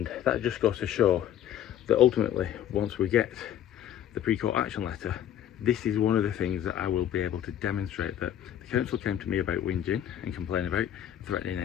that just goes to show that ultimately, once we get the pre-court action letter, this is one of the things that I will be able to demonstrate, that the council came to me about whinging and complaining about, threatening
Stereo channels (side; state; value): right; quieter; 10.8 dB